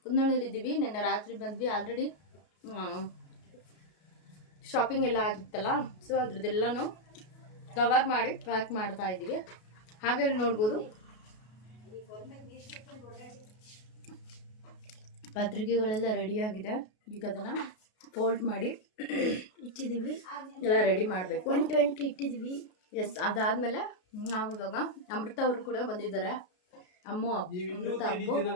ಕುನ್ನಳ್ಳಿದ್ದೀವಿ. ನಿನ್ನೆ ರಾತ್ರಿ ಬಂದ್ವಿ. ಆಲ್ರೆಡಿ ಶಾಪಿಂಗ್ ಎಲ್ಲ ಆಗಿತ್ತಲ್ಲ, ಸೊ ಅದ್ರದ್ದೆಲ್ಲನೂ ಕವರ್ ಮಾಡಿ ಪ್ಯಾಕ್ ಮಾಡ್ತಾ ಇದ್ದೀವಿ. ಹಾಗೆ ನೋಡ್ಬೋದು ಪತ್ರಿಕೆಗಳೆಲ್ಲ ರೆಡಿಯಾಗಿದೆ. ಈಗ ಅದನ್ನು ಫೋಲ್ಡ್ ಮಾಡಿ ಇಟ್ಟಿದ್ದೀವಿ, ಎಲ್ಲ ರೆಡಿ ಮಾಡಬೇಕು. 120 ಇಟ್ಟಿದ್ದೀವಿ. ಎಸ್, ಅದಾದಮೇಲೆ ನಾವು ಇವಾಗ ಅಮೃತ ಅವರು ಕೂಡ ಬಂದಿದ್ದಾರೆ. ಅಮೃತ ಅಪ್ಪು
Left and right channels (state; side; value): late; right; 33 ms